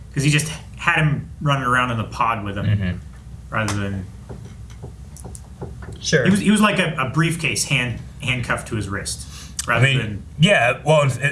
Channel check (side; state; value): both; identical; correlation 1.00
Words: because he just had him running around in the pod with him rather than he was like a briefcase handcuffed to his wrist rather than well